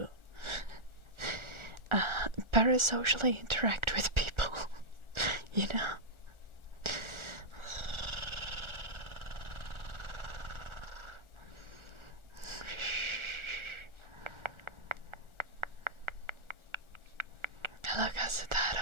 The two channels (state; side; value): late; left; 1.4 ms